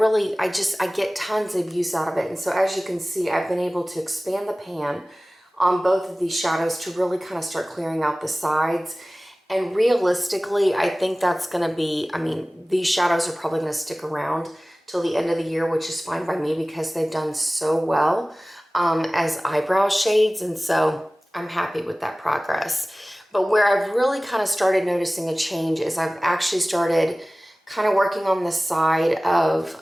get tons of use out of it. And so as you can see, I've been able to expand the pan on both of these shadows to really kind of start clearing out the sides. And realistically, I think that's gonna be, these shadows are probably gonna stick around till the end of the year, which is fine by me because they've done so well as eyebrow shades. And so I'm happy with that progress. But where I've really kind of started noticing a change is I've actually started kind of working on the side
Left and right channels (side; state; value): both; normal; correlation 0.98